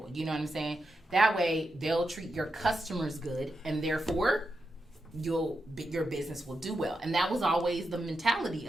You know what I'm saying? That way, they'll treat your customers good, and therefore, your business will do well. And that was always the mentality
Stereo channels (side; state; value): both; normal; correlation 0.87